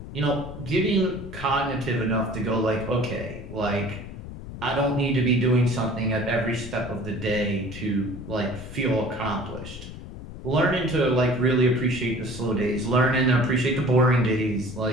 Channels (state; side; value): noise; left; rumble, 12 dB below the sound